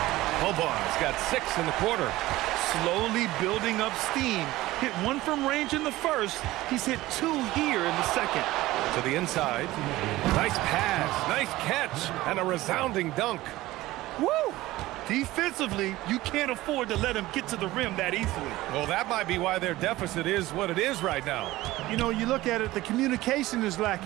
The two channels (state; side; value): quieter; left; 17.5 dB